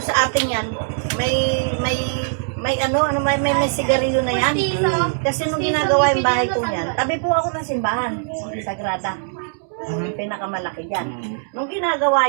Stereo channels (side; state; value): left; silent; digital silence